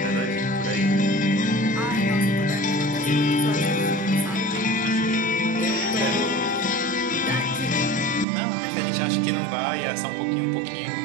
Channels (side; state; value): left; drops out; at 8.2 s